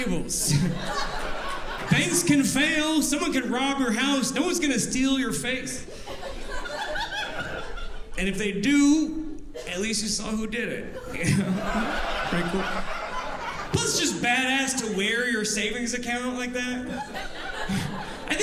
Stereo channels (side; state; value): both; identical; correlation 1.00